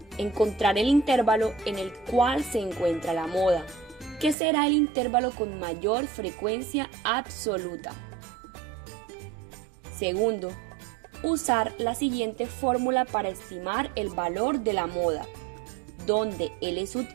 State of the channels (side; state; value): left; drops out; at 4.4 s